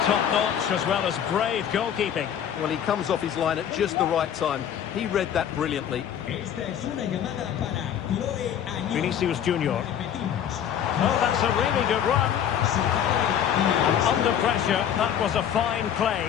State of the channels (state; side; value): quieter; right; 9.4 dB